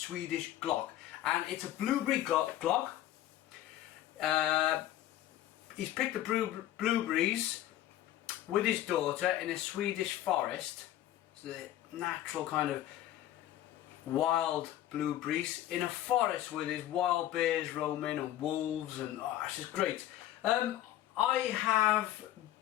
Glögg, and it's a blueberry Glögg. He's picked the blueberries with his daughter in a Swedish forest. It's the natural kind of wild blueberries in a forest with his wild bears roaming and wolves, and it's just great. I have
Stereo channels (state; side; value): quieter; right; 13.4 dB